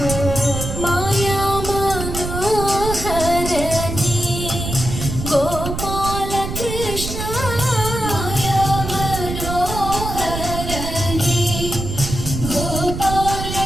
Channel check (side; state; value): right; noise; rumble, 5 dB below the sound